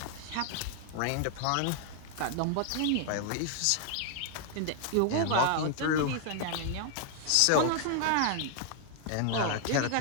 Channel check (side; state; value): both; different; correlation 0.00